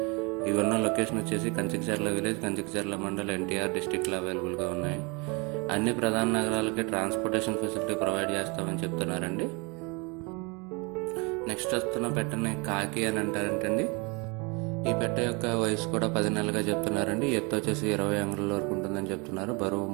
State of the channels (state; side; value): quieter; left; 29.9 dB